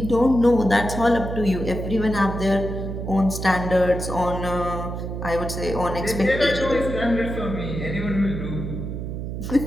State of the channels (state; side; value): noise; right; hum, 5 dB below the sound